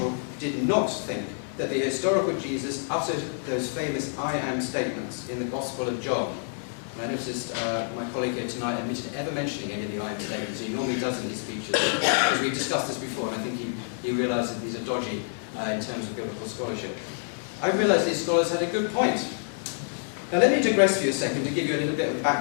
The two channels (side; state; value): right; silent; 60 dB below the other